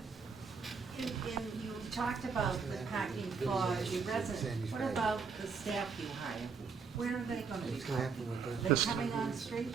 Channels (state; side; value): quieter; left; 5.4 dB